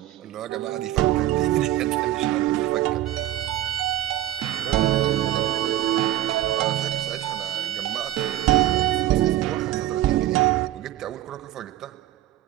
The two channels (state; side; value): quieter; left; 13.9 dB